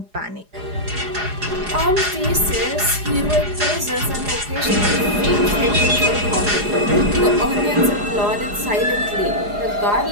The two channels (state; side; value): late; left; 4.9 ms